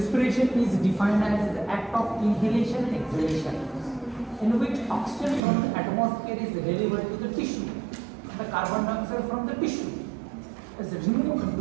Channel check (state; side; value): drops out; left; at 5.4 s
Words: is defined as the act of inhalation and exhalation in which oxygen from the atmosphere is delivered to the tissue and the carbon dioxide from the tissue is removed